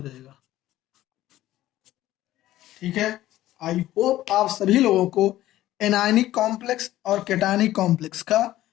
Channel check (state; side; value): quieter; right; 14.7 dB